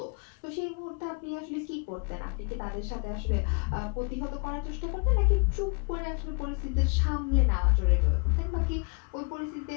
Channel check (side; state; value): right; quieter; 34.6 dB